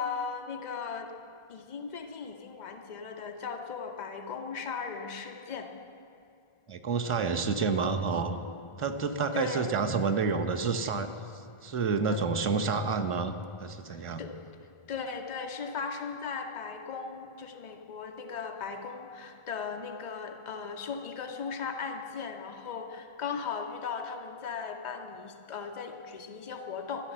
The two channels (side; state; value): right; late; 1.4 ms